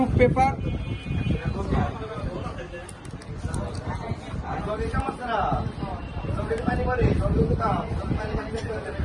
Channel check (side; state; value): both; identical; correlation 1.00